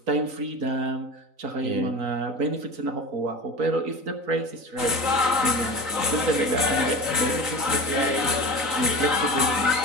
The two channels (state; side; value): late; left; 3.9 ms